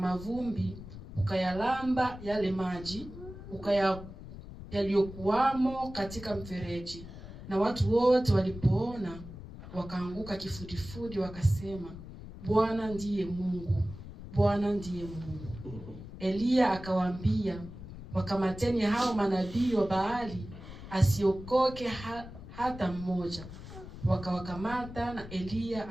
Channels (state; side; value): noise; left; rumble, 13 dB below the sound